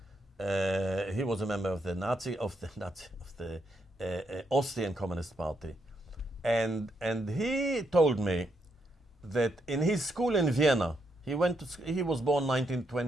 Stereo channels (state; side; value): normal; both; correlation 0.78